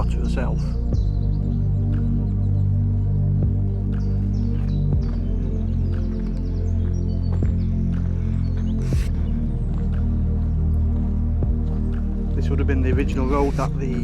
herself. This would have been the original road that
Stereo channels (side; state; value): both; identical; correlation 1.00